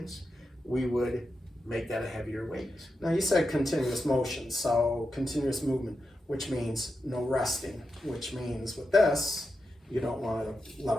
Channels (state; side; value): normal; both; correlation 0.88